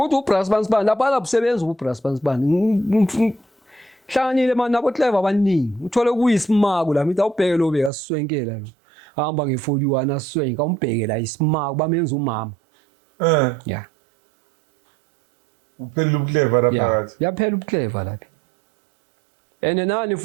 uBras Bansibani lapha labusebenza uBras Bansibani hlanganile manje nabo Clever abaningi uthole kuyisimako la mithi awubheke lo beka siswenkela lo hamba nge41 aswenka umbheke la isimako bamenza umama uphela uClever lapha yaphela uClever lapha ene nani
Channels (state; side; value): drops out; left; at 7.9 s